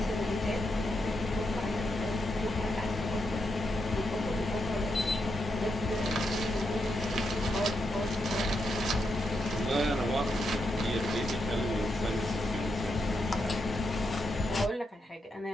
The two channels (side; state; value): both; normal; correlation 0.83